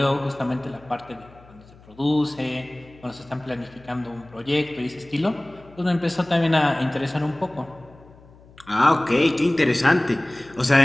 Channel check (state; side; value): noise; left; hum, 24 dB below the sound